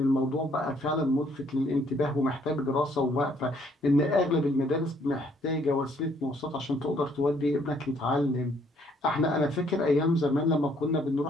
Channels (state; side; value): normal; both; correlation 0.65